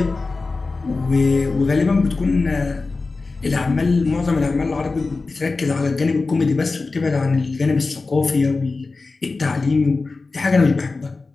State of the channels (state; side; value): quieter; right; 3.8 dB